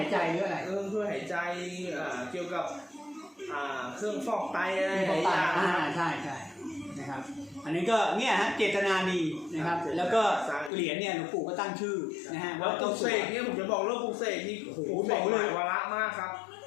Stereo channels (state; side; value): drops out; right; at 10.7 s